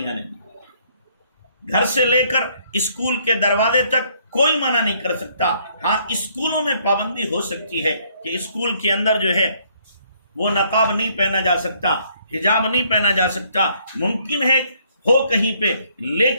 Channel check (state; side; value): inverted; both; correlation -0.66